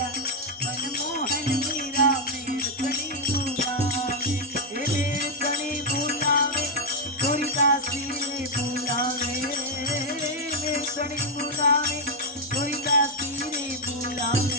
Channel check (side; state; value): both; normal; correlation 0.02